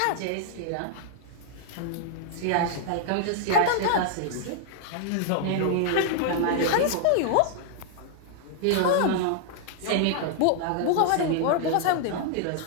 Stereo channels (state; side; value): different; both; correlation -0.01